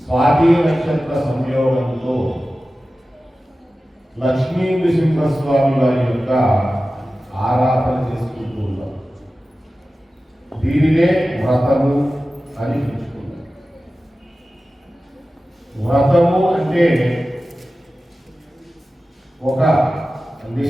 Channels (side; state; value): both; normal; correlation 0.95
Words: స్వాతి నక్షత్ర సంయోగంతో లక్ష్మీ నృసింహస్వామి వారి యొక్క ఆరాధన చేసుకుంటూ ఉన్నాం. దీనినే వ్రతము అని పిలుచుకున్నాం. వ్రతము అంటే ఒక